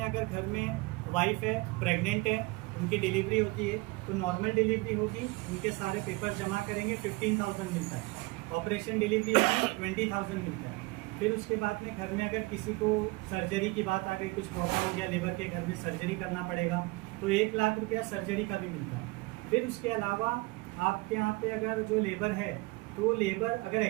अगर घर में वाइफ है, प्रेग्नेंट है, उनकी डिलीवरी होती है तो नॉर्मल डिलीवरी होगी, उनके सारे पेपर जमा करेंगे, 15,000 मिलता है। ऑपरेशन डिलीवरी होगी 20,000 मिलता है। फिर उसके बाद में घर में अगर किसी को सर्जरी की बात आ गई, कुछ प्रॉब्लम हो गया, लेबर के घर में सर्जरी करना पड़ेगा तो 1 लाख रुपया सर्जरी का भी मिलता है। फिर उसके अलावा आपके यहाँ पे अगर जो लेबर है, तो लेबर अगर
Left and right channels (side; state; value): left; quieter; 24.4 dB